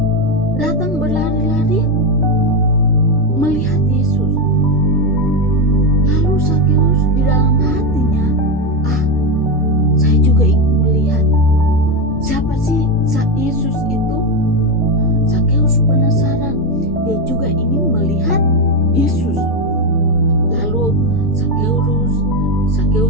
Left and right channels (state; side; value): normal; both; correlation 0.09